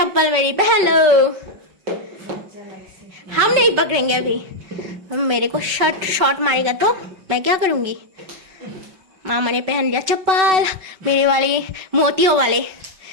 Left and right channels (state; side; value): late; left; 5.3 ms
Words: मेरी पहन लो। हम नहीं पकड़ेंगे अभी, मेरे को शॉट मारेगा तो मैं क्या करूंगी। मामा ने पहन लिया चप्पल, मेरे वाले मोतियों वाले